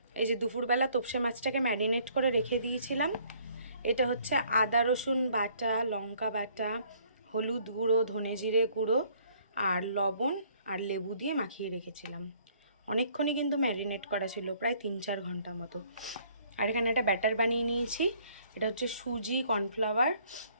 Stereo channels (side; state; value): both; inverted; correlation -0.61